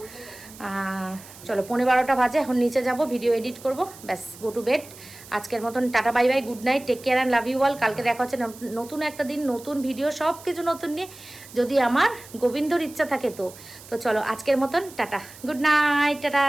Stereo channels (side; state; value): right; noise; hiss, 19 dB below the sound